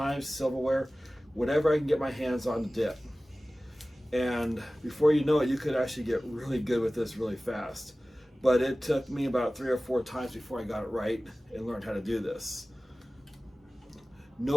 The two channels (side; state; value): both; normal; correlation 0.97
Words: silverware, whatever I can get my hands on to dip. And before you know it, you could actually get really good with this really fast. But it took me about 3 or 4 times before I got it right and learned how to do this.